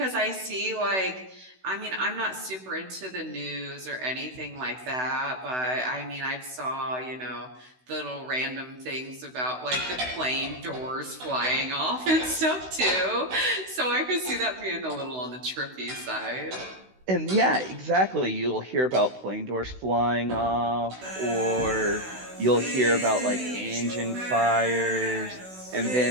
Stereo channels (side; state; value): left; late; 16 ms